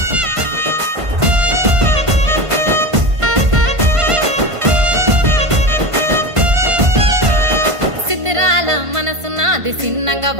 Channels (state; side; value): late; left; 1.5 ms